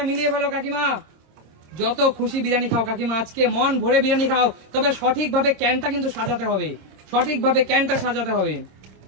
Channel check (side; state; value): left; late; 26 ms